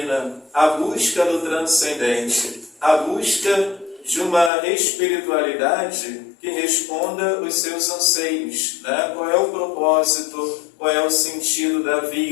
a busca do transcendente, a busca de uma espiritualidade que responda os seus anseios, né? Qual é o propósito, qual é o sentido da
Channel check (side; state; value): right; drops out; at 4.5 s